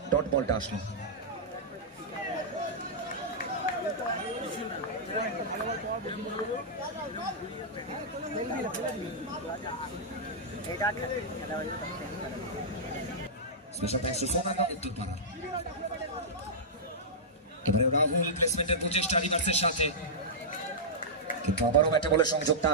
ডট বলটা আসলো। স্পেশাল থ্যাঙ্কস টু সোনারগাঁ উত্তরপাড়া। এবারে রাহুল প্লেসমেন্টের প্রচেষ্টা রিভার্সের সাথে, কিন্তু আবারও ব্যাটে বলে সংযোগটা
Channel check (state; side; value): normal; both; correlation -0.12